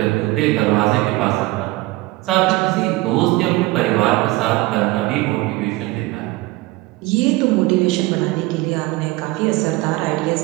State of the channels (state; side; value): quieter; left; 19.9 dB